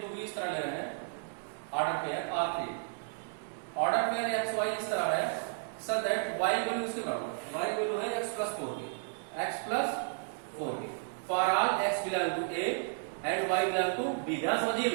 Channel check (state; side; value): silent; left; 56 dB below the other